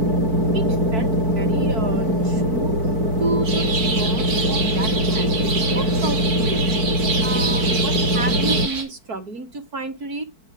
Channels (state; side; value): late; left; 4.5 ms